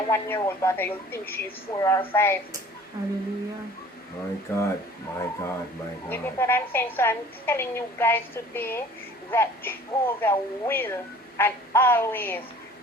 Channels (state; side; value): normal; both; correlation 0.49